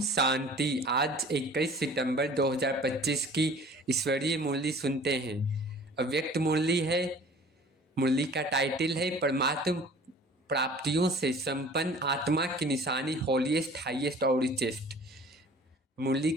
शांति। आज 21 सितंबर 2025 की ईश्वरीय मुरली सुनते हैं। अव्यक्त मुरली है। मुरली का टाइटल है परमात्म प्राप्तियों से संपन्न आत्मा की निशानी होलीएस्ट, हाईएस्ट और रिचेस्ट। मुरली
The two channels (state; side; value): normal; both; correlation 0.47